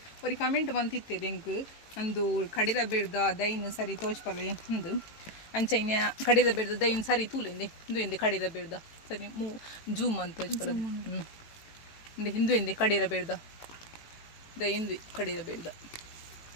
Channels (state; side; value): late; right; 18 ms